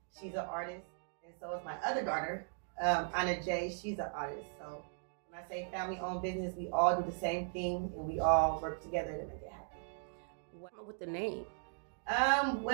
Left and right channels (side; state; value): left; silent; digital silence